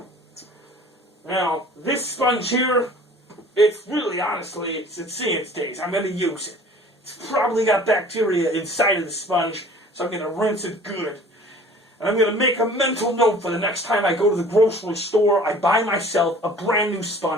Now, this sponge here, it's really, honestly, it's seeing its days. I'm going to use it. It's probably got bacteria inside of the sponge, so I'm going to rinse it good. And I'm going to make a mental note for the next time I go to the grocery store, I buy myself a brand new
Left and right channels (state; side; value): normal; both; correlation 0.48